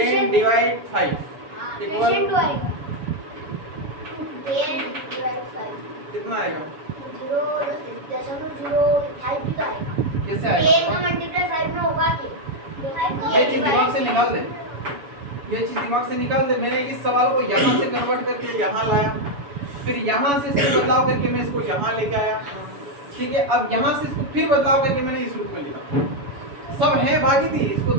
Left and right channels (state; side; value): late; left; 7.0 ms